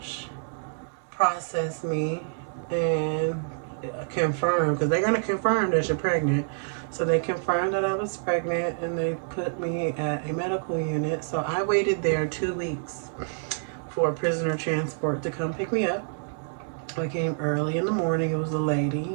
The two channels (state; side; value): silent; left; digital silence